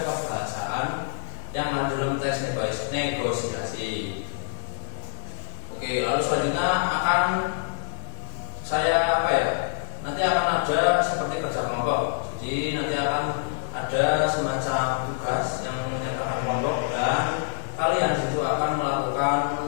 kebahasaan yang ada dalam teks negosiasi. Oke, lalu selanjutnya akan saya nanti akan ada seperti kerja kelompok. Jadi nanti akan ada semacam tugas yang menyertakan kelompok dan kalian itu akan melakukan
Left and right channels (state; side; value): silent; right; digital silence